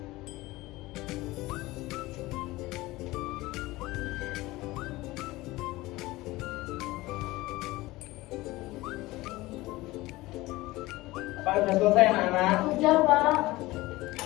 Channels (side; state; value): right; quieter; 19.4 dB